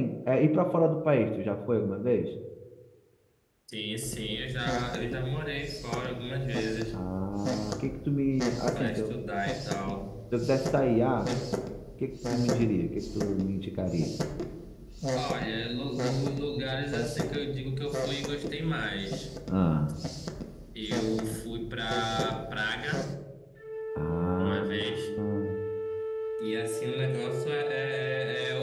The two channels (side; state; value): both; identical; correlation 1.00